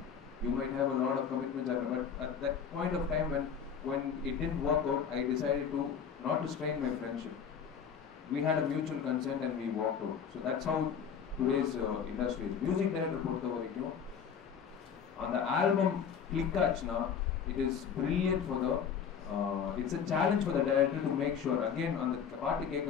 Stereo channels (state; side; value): quieter; right; 7.2 dB